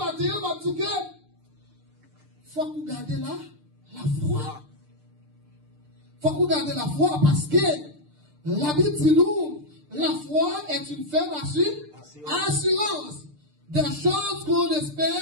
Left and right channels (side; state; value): left; late; 6.7 ms